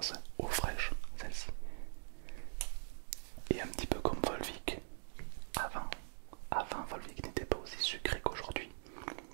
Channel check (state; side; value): silent; left; digital silence